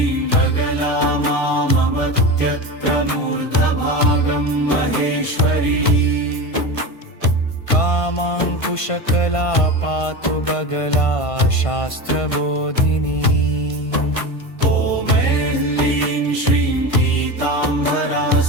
बगला मामवत्यत्र मूर्धभागं महेश्वरी कामाङ्कुशकला पातु बगला शास्त्रबोधिनी ॐ ऐं श्रीं पीताम्बरा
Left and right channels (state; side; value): late; right; 1.5 ms